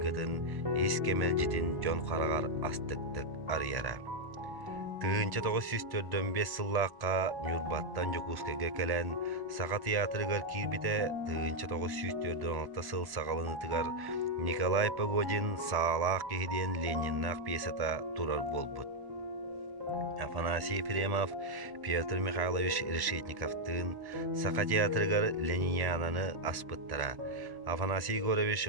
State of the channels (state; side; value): late; left; 1.1 ms